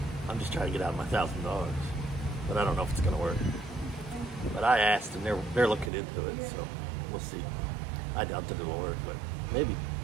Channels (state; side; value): drops out; left; at 5.9 s